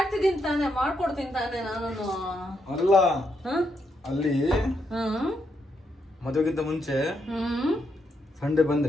ತಾನೆ, ಮಾಡ್ಕೊಡ್ತೀನಿ ತಾನೆ ನಾನು. ಅಲ್ಲ ಅಲ್ಲಿ ಮದುವೆಗಿಂತ ಮುಂಚೆ ಸಂಡೆ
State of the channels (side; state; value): both; normal; correlation 0.79